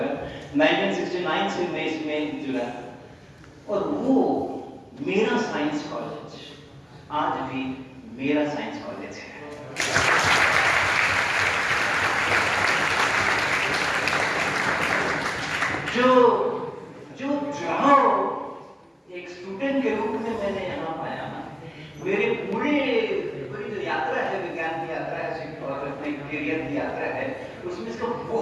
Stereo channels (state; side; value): identical; both; correlation 1.00